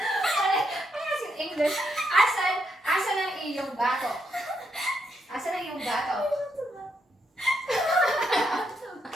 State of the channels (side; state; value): both; normal; correlation 0.79